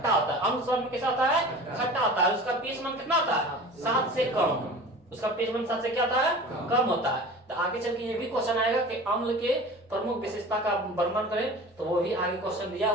होता है। अम्ल स्वाद में कैसा होता है? खट्टा होता है। उसका पीएच मान कितना होता है? 7 से कम। उसका पीएच मान 7 से क्या होता है? कम होता है। तो आगे चल के ये भी क्वेश्चन आएगा कि अम्ल के प्रमुख विशेषता का वर्णन करें, तो वो भी आगे क्वेश्चन दिया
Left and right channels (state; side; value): normal; both; correlation 0.38